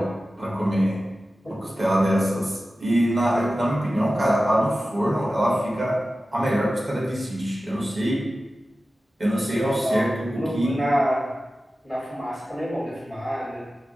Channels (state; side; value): normal; both; correlation 0.94